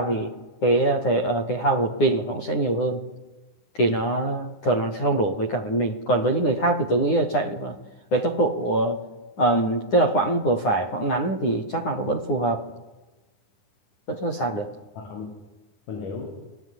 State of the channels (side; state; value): right; late; 9.8 ms